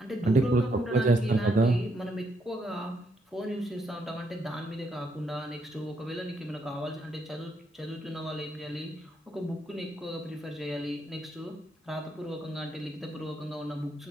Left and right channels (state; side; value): normal; both; correlation 0.76